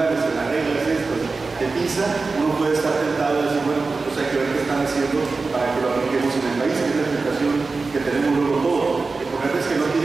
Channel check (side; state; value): left; quieter; 4.0 dB